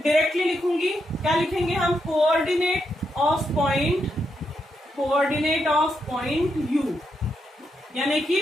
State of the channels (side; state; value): both; normal; correlation 0.82